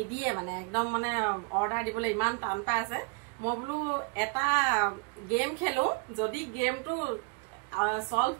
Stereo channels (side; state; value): left; quieter; 33.4 dB